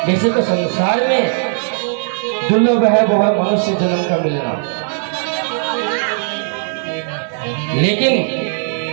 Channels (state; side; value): silent; left; 68 dB below the other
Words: वैसे तो संसार में दुर्लभ है वो है मनुष्य जन्म का मिलना, लेकिन